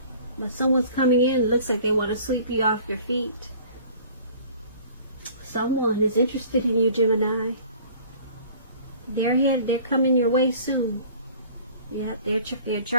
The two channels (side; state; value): both; inverted; correlation -0.48